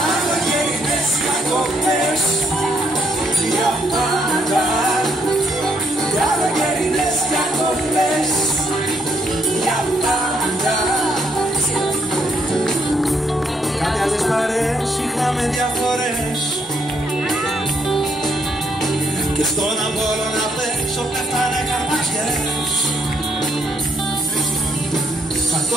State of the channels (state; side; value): normal; both; correlation 0.73